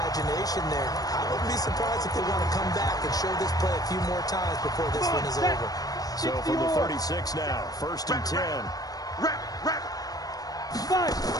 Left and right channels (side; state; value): right; late; 0.18 ms